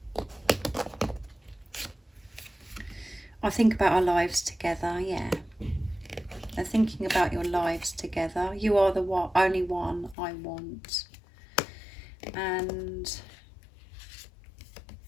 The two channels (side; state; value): right; drops out; at 10.2 s